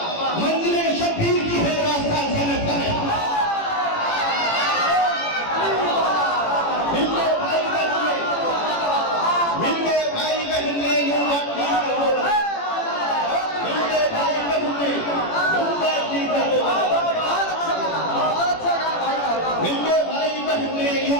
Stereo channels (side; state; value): right; late; 18 ms